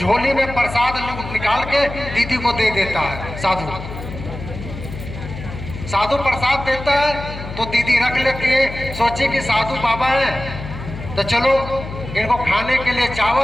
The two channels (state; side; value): noise; left; hum, 10 dB below the sound